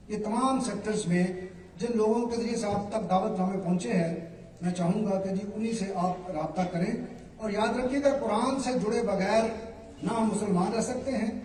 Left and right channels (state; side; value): identical; both; correlation 1.00